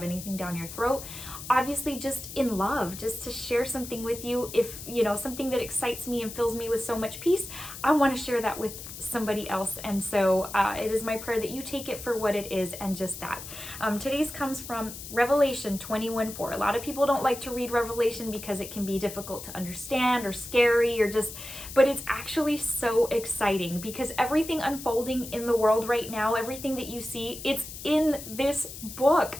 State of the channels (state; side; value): noise; left; hiss, 11 dB below the sound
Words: anything down your throat. Obviously, just in love, just to share something with you. If you know something that excites me and fills me with so much peace, I want to share that with somebody else. And so it is my prayer that you take it for what it is and just that. Today's comes from Revelation 21:4. A lot of people don't like to read Revelation because it can be difficult to understand or scary or just, but it's actually so exciting because everything unfolding in the world right now, everything that you see, it's in this book.